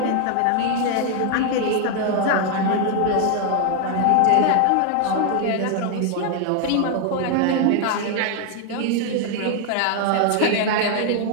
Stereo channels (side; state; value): both; different; correlation 0.00